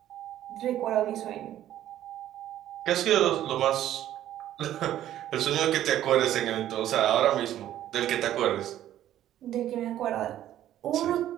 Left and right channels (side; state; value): left; quieter; 12.4 dB